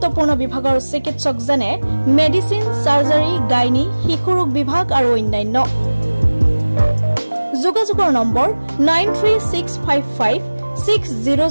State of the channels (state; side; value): inverted; both; correlation -1.00